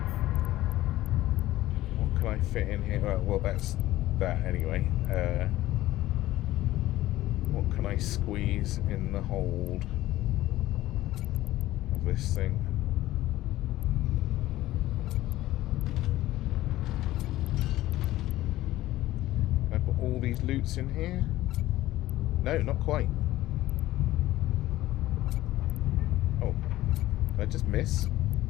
I fit in here? Well, that's that anyway. What can I squeeze in the hold of this thing? Can I put all these loots in here? No, not quite. Oh, did I just miss?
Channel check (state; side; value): quieter; right; 15.8 dB